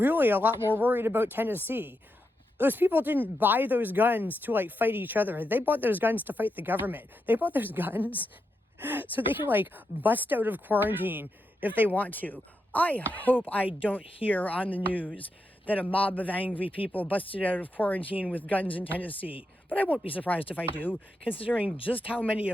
a lot more worried about Tennessee. Those people didn't buy those guns to like fight each other. They bought those guns to fight the government. They bought those guns so they can like bust out of quarantine if they want to. I hope I don't hear on the news that a mob of angry people busted out of quarantine with guns in Tennessee. But I won't be surprised if I do, considering just how many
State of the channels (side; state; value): both; normal; correlation 0.85